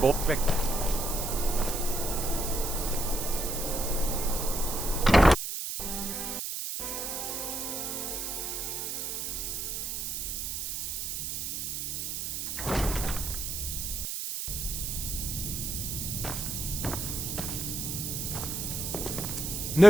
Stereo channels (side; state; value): right; noise; hiss, 3 dB below the sound